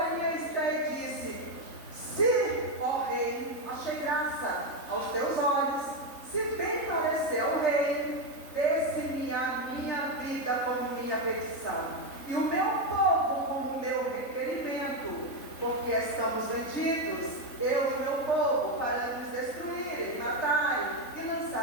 Esther e disse: se, ó rei, achei graça aos teus olhos, se bem parecer ao rei, desse-me a minha vida como minha petição, e o meu povo como meu requerimento, porque estamos vendidos, eu e meu povo, para nos destruírem, matarem e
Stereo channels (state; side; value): late; right; 3.7 ms